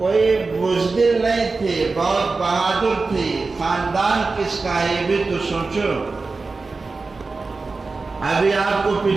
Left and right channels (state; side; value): quieter; left; 4.0 dB